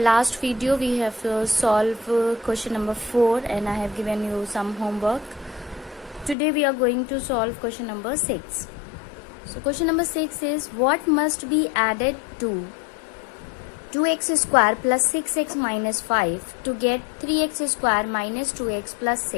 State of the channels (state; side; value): drops out; right; at 6.4 s